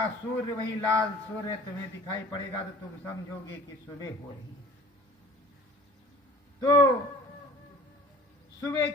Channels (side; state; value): both; normal; correlation 0.47